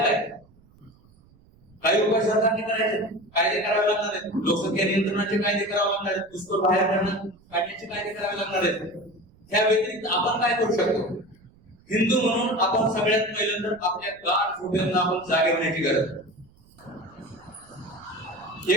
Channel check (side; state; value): right; noise; rumble, 29 dB below the sound